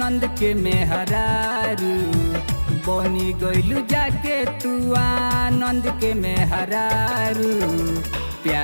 के मेहरारू बनी गैलू जाके तू आनंद के मेहरारू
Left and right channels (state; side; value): inverted; both; correlation -1.00